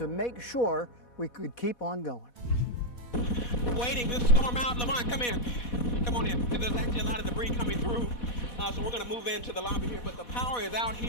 make sure we could keep on going. Waiting this storm out. Lamont, come in. Come on in. There's actually a lot of debris coming through, so we're going to move into the lobby here, but the power is out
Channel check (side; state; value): right; late; 4.1 ms